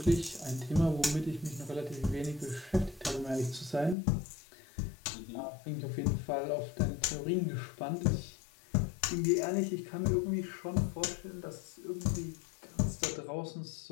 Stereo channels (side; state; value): right; drops out; at 4.0 s